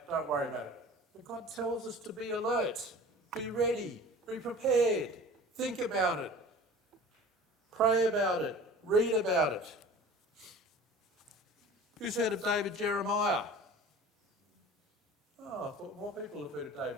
Don't worry about it. But God tells us to be alert, be ready, be prepared, think about it, pray about it, read about it. Who's heard of David Jeremiah? Oh, I thought more people have heard of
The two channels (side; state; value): both; normal; correlation 0.42